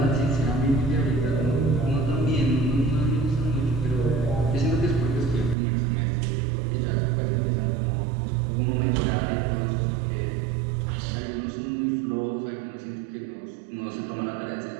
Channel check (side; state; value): left; drops out; at 5.6 s